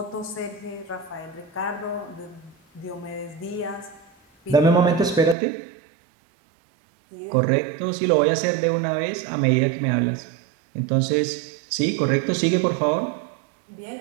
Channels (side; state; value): left; drops out; at 5.4 s